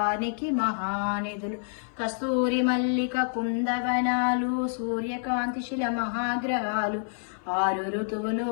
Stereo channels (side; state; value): right; silent; 56 dB below the other